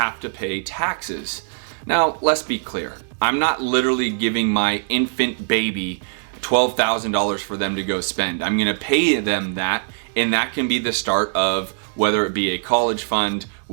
to pay taxes? Now, let's be clear. I'm not literally giving my infant baby $12,000 for them to go spend. I'm gonna pay them that, and that can be the start of whether it be a college fund,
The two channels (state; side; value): silent; left; digital silence